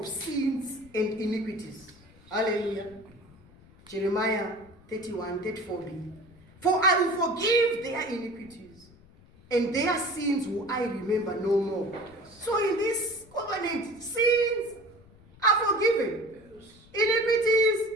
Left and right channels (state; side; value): noise; left; rumble, 25 dB below the sound